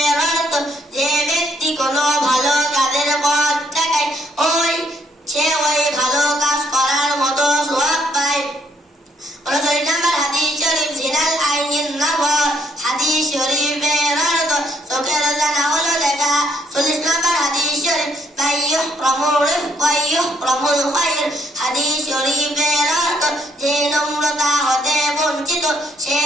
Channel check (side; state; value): both; normal; correlation 0.70